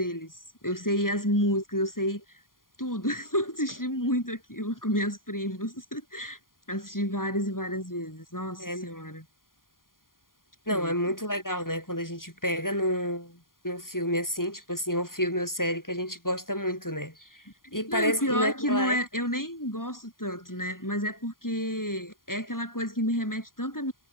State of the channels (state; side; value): late; right; 0.91 ms